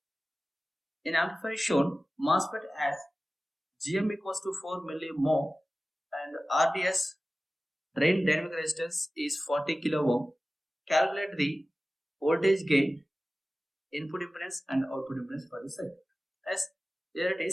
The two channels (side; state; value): both; normal; correlation 0.96